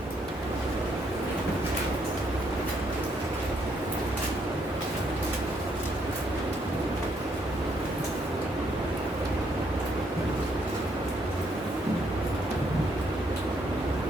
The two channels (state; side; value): normal; both; correlation 0.72